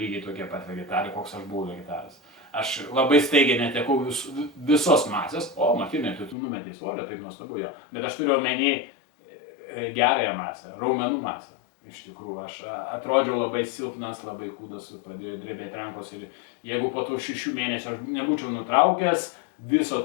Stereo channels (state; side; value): drops out; right; at 6.4 s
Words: tokie pat vegetarai, koks aš buvau vegetaras. Aš labai staigiai netekau visos masės, Martynai, tu numetei svorio, taip nuostabu jo, bet aš turiu omeny gerąją masę, raumenų masę. Iš tikrųjų, aš atrodžiau labai silpnas, labai kūdas, pradėjo drebėti rankos ir jeigu po tų 6 mėnesių aš nebūčiau nutraukęs viso